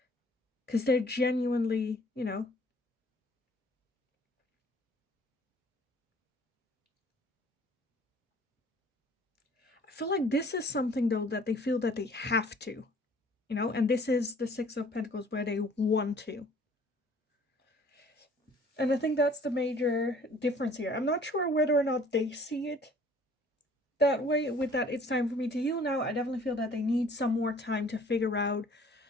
because they're genuinely, you know, I feel like this is something though that they feel that they have to, you know, and this is the Six of Pentacles where they want to. And I think that's the major difference here. I'm not sure whether or not they see it that way. With that, it's time for me to heal now. I definitely feel that they need some more time to figure out,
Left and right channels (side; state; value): both; normal; correlation 0.54